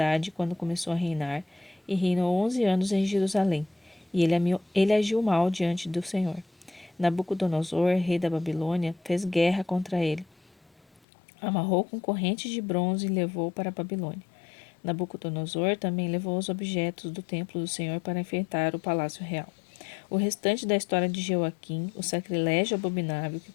quando começou a reinar e reinou 11 anos em Jerusalém, e ele agiu mal diante do Senhor. Nabucodonosor, rei da Babilônia, fez guerra contra ele. Amarrou com correntes de bronze e levou para a Babilônia. Nabucodonosor também levou os objetos do templo do Senhor para enfeitar o palácio real. O restante da história de Joaquim, o sacrilégio abominável que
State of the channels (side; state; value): right; drops out; at 11.0 s